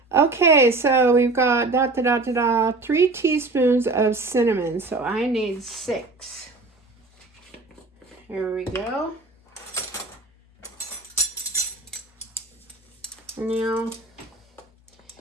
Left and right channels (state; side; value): quieter; left; 3.3 dB